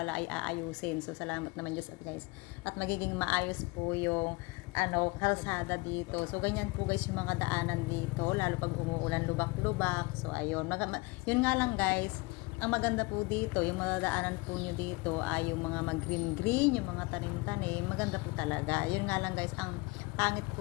ay aayusin. So salamat naman Diyos guys. At magiging maayos po yung kalsada dito. So ganyan po guys yung mga daanan dito. Lalo pag umuulan, lubak-lubak. So ayun, yun nga lang guys. Ang maganda po dito, yung madadaanan po nyo dito ay yung mga mag-green-green, yung mga tanim-tanim, maganda po talaga. Yun nga lang guys, ang pangit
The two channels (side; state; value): right; quieter; 25.3 dB